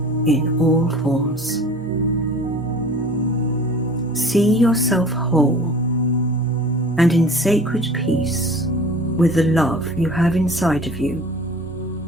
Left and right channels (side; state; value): both; normal; correlation 0.44